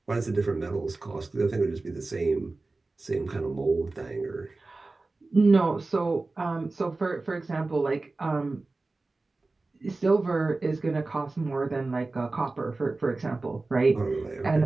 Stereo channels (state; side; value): quieter; left; 3.4 dB